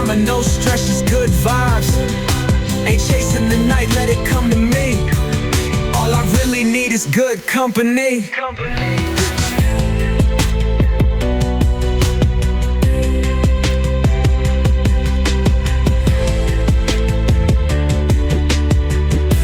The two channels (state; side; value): identical; both; correlation 1.00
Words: no stress, just good vibes. Ain't chasing the night, let it come to me. All I really need is good company.